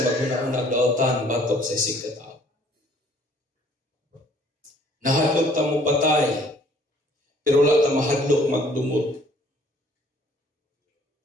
maghuna-unag dautan batok sa isig katao. Nahadlok tang mo patay, pero wala tang mahadlok magdumot.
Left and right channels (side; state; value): both; normal; correlation 0.58